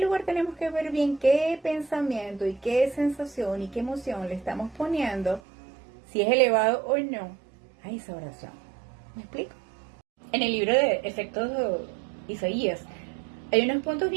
lugar, tenemos que ver bien qué pensamiento y qué sensación y qué emoción le estamos poniendo, si es elevado o no, a esa oración. ¿Me explico? En el libro de Efectos de Isaías hay unos puntos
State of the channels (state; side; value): drops out; left; at 5.4 s